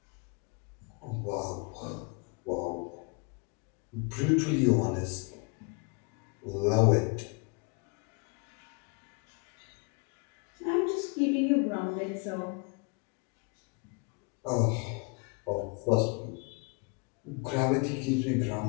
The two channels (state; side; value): quieter; right; 32.2 dB